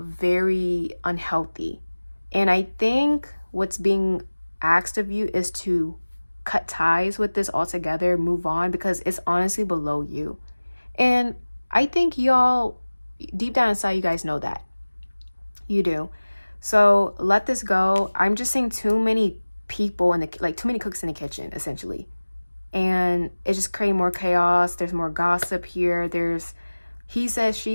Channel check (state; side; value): inverted; both; correlation -1.00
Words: unhealthy. And I think what's being asked of you is to cut ties with this altogether, move on, because it's honestly below you. And I think y'all, deep down inside, you guys know that. You do. So let this go. I'm just seeing too many people too many cooks in the kitchen, essentially. And it's just creating more chaos. There's more gossip here. There's he said,